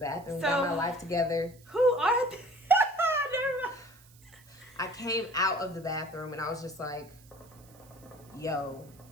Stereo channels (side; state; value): right; noise; hiss, 26 dB below the sound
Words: got my life together. Who are they? Never mind. I came out of the bathroom and I was just like, yo,